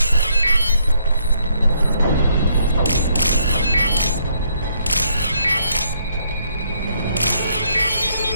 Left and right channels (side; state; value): both; inverted; correlation -0.71